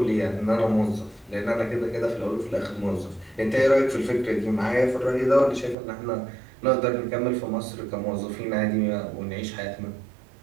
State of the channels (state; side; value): drops out; left; at 5.8 s